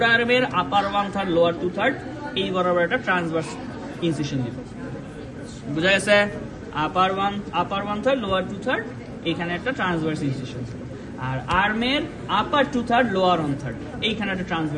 আর্মের upper one third lower two third এই বরাবর একটা ট্রান্সভার্স ইনসিশন দিব বুঝা গেছে upper one third lower two third এখানে একটা ট্রান্সভার্স ইনসিশন আর আর্মের upper two third lower one third এইখানে একটা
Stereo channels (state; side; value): identical; both; correlation 1.00